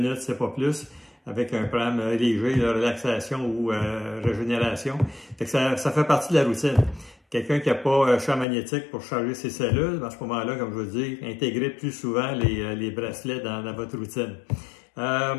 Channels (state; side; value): drops out; right; at 8.5 s